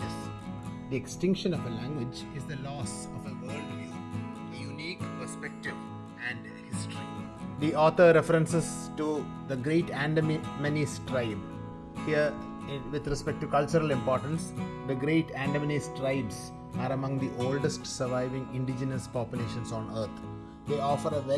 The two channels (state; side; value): identical; both; correlation 1.00